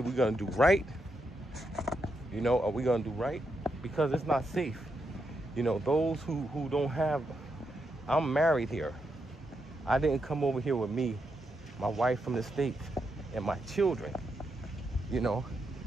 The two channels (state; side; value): normal; both; correlation 0.82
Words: gonna do right. You know, are we gonna do right? Because it's not safe. You know, those who don't have, I'm married here. I didn't come over here with me, my wife from the States, and my children. You know,